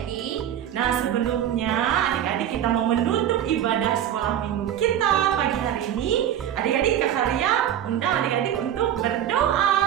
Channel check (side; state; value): left; quieter; 10.6 dB